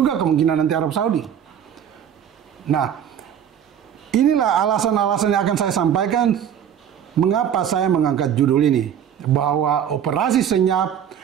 kemungkinan nanti Arab Saudi. Nah, inilah alasan-alasan yang akan saya sampaikan mengapa saya mengangkat judul ini, bahwa operasi senyap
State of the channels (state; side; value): quieter; left; 9.1 dB